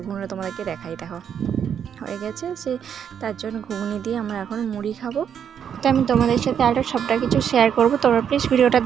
ঘুগনিটা তোমাদেরকে দেখাই। দেখো হয়ে গেছে, তার জন্য ঘুগনি দিয়ে আমরা এখন মুড়ি খাবো। তো আমি তোমাদের সাথে আরও সবটা কিছু শেয়ার করবো, তোমরা প্লিজ ভিডিওটা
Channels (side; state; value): left; quieter; 8.2 dB